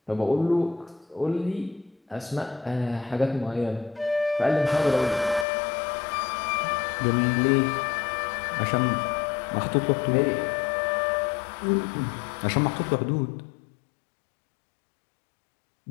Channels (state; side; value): drops out; right; at 5.5 s